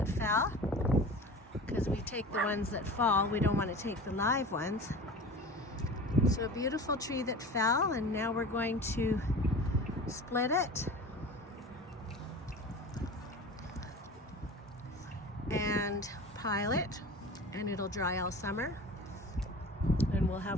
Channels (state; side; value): normal; both; correlation 0.36